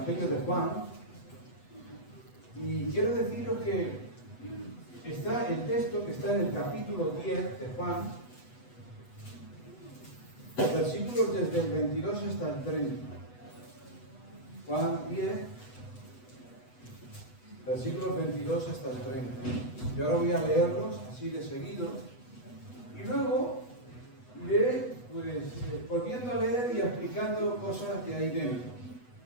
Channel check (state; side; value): late; right; 8.1 ms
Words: de Juan y quiero deciros que está el texto que está en el capítulo 10 de Juan, versículos desde el 22 hasta el 30. Juan 10, versículos 22 hasta el 30. Yo ahora voy a leerlos así de seguido y luego iré volviendo a leer y explicando cosas de ahí dentro.